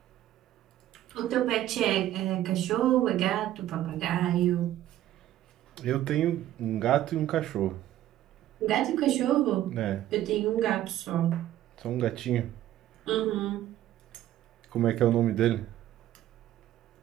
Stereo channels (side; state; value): left; quieter; 13.2 dB